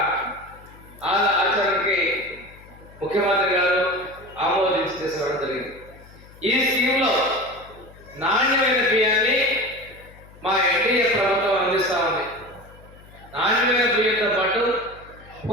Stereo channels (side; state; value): left; noise; hum, 22 dB below the sound